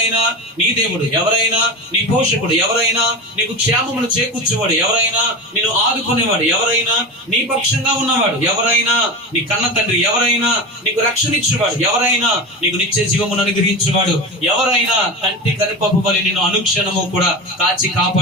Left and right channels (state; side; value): normal; both; correlation 0.24